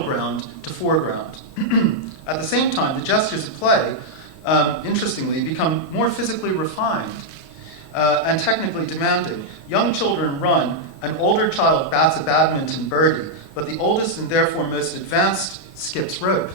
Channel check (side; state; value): both; normal; correlation -0.03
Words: ground to foreground. At the same time, the gestures of play, interestingly, become more physically refined and technically demanding. Young children run, an older child bats a badminton birdie, but the oldest and therefore most advanced skips rope.